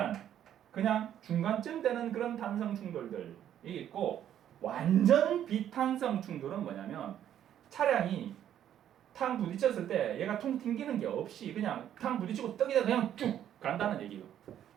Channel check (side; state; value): left; quieter; 10.5 dB